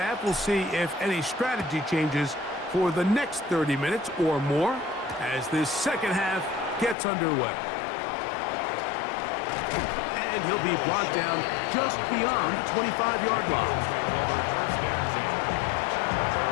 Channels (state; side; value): drops out; right; at 7.0 s